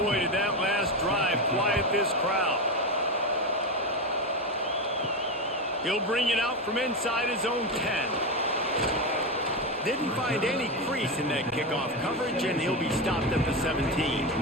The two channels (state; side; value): normal; both; correlation 0.14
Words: boy, did that last drive quiet this crowd. He'll bring it out from inside his own 10. Didn't find any crease in that kickoff coverage, and he'll be stopped at the 17.